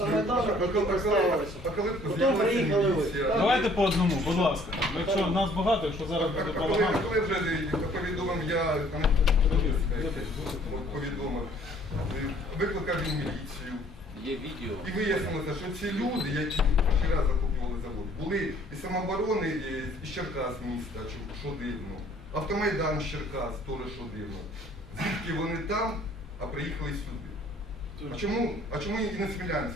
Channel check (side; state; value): both; normal; correlation 0.58